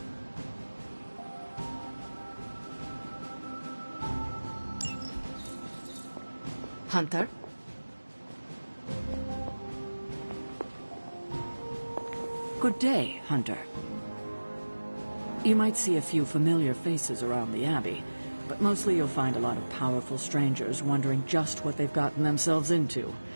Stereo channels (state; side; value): inverted; both; correlation -1.00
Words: Hunter? Good day, Hunter. You might see a few familiar faces around the Abbey, but mostly you'll find a lot of powerful strangers wondering just what they've gotten themselves into.